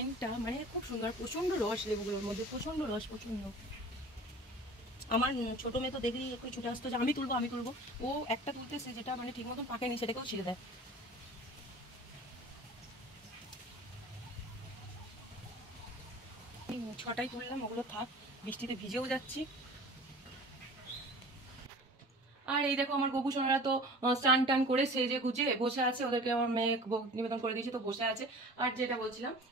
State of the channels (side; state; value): both; normal; correlation 0.42